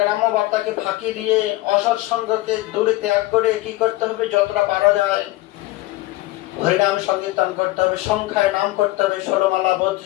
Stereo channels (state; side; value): quieter; right; 18.4 dB